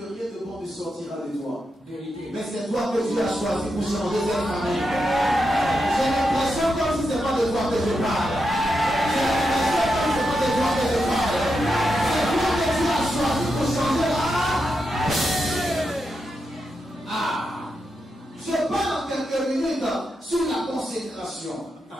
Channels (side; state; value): both; normal; correlation 0.86